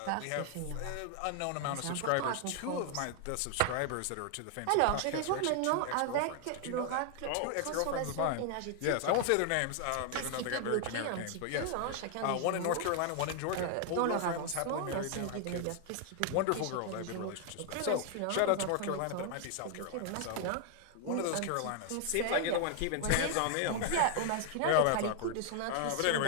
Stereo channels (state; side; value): different; both; correlation 0.00